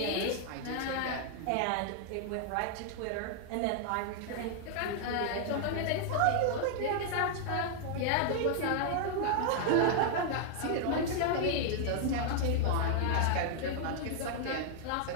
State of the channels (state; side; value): different; both; correlation 0.00